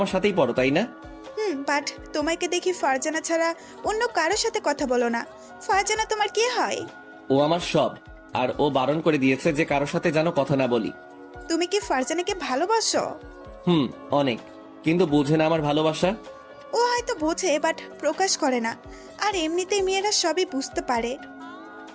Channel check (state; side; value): identical; both; correlation 1.00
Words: সাথেই পড়ো, তাই না? বাট তোমাকে দেখি ফারজানা ছাড়া অন্য কারোর সাথে কথা বলো না। ফারজানা তোমার কে হয়? ও আমার সব, আর ও বারণ করে দিয়েছে যে কারোর সাথে যেন কথা না বলি। তুমি কি ফারজানাকে ভালোবাসো? অনেক, কিন্তু বুঝে না আমার ভালোবাসা। ও হয়তো বোঝে, বাট প্রকাশ করে না। আর এমনিতেই মেয়েরা সবই বুঝতে পারে।